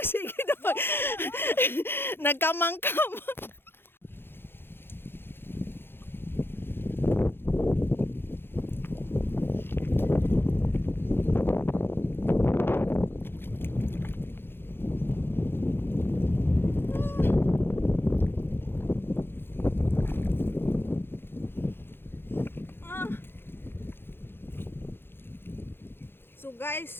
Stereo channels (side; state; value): right; late; 0.10 ms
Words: sige daw. Nagkamangkam. So